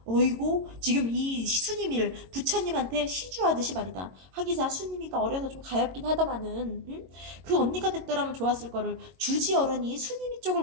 어이고, 지금 이 수님이를 부처님한테 시주하듯이 말이다. 하기사 수님이가 어려서 좀 가엾긴 하다마는, 응? 그 언니가 됐더라면 좋았을 거를 주지 어른이 수님이 쪽을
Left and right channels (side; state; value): left; late; 22 ms